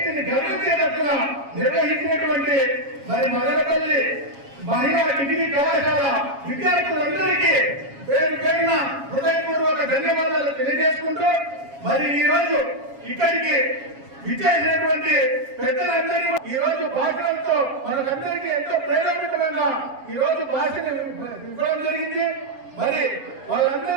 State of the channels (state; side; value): late; left; 7.3 ms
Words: గర్వించేటట్టున నిర్వహించినటువంటి మరి మదనపల్లి మహిళా డిగ్రీ కళాశాల విద్యార్థులందరికీ పేరు పేరున హృదయపూర్వక ధన్యవాదాలు తెలియజేసుకుంటూ మరి ఈ రోజు ఇక్కడికి విచ్చేసినటువంటి పెద్దలందరూ ఈ రోజు భాషలతో మనకందరికీ ఎంతో ప్రేరేపితమైన ఈ రోజు భాషను ఇవ్వడం జరిగింది. మరి